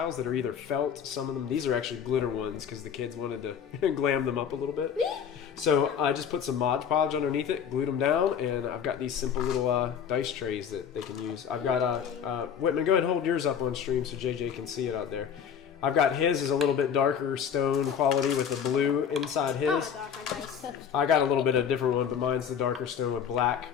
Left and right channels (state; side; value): quieter; right; 7.8 dB